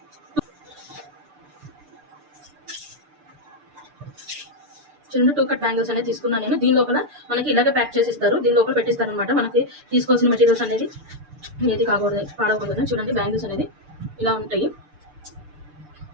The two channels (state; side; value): late; left; 6.8 ms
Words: చిన్న 2 కట్ బ్యాంగిల్స్ అనేది తీసుకున్నాను నేను. దీని లోపల మనకి ఇలాగే ప్యాక్ చేసి ఇస్తారు. దీని లోపల పెట్టిస్తారు అనమాట. మనకి తీసుకోవాల్సిన మెటీరియల్స్ అనేది ఏది పాడకూడదు. చూడండి, బ్యాంగిల్స్ అనేది ఇలా ఉంటాయి.